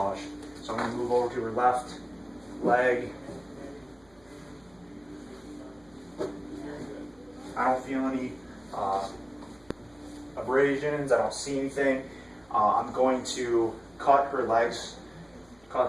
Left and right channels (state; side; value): noise; right; hum, 30 dB below the sound